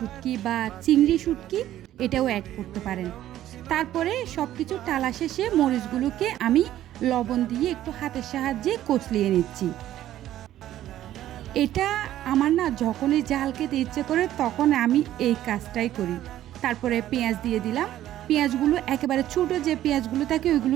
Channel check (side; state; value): left; quieter; 12.9 dB